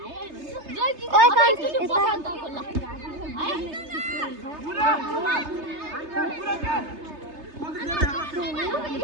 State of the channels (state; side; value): late; left; 3.3 ms